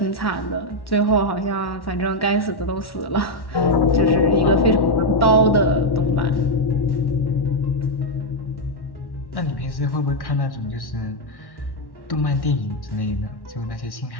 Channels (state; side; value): late; right; 1.1 ms